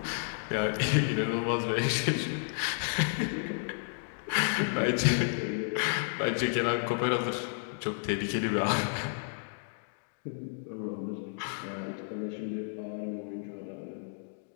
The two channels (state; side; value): silent; right; digital silence